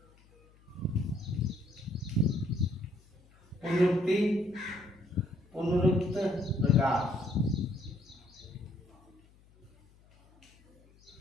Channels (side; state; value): left; noise; hum, 28 dB below the sound